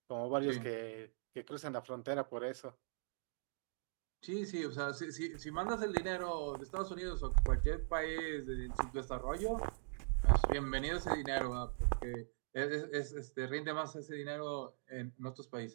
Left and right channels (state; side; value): silent; left; digital silence